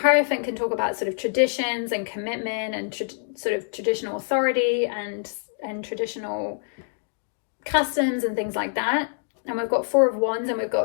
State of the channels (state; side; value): silent; right; digital silence